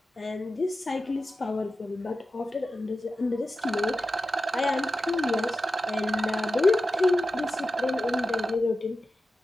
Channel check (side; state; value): both; normal; correlation 0.92